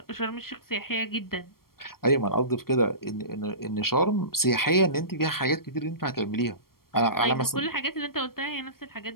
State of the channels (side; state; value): right; late; 0.93 ms